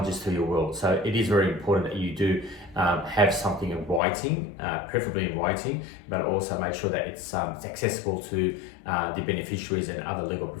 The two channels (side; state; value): right; drops out; at 4.0 s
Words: to your will. So it is very important that you do have something in writing, preferably in writing, but also make sure that it's accessible to the beneficiaries and other legal